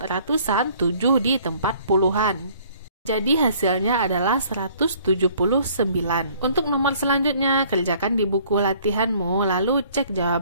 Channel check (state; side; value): inverted; both; correlation -0.57